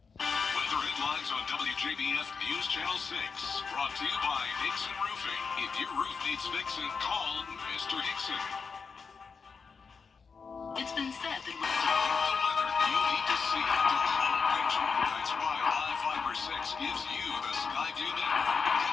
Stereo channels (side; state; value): right; quieter; 5.3 dB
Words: Weather headlines on WJBF News Channel 6. Brought to you by Hickson Roofing. If your roof needs fixing, call Mr. Hickson. It's been said that The weather you need to see to call picture. That's why Live Fiber 6 gives you the Skyview network.